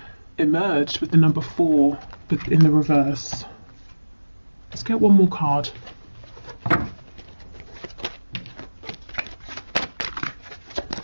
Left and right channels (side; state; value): both; inverted; correlation -1.00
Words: emerged with the number 4, but in the reverse. Let's get one more card.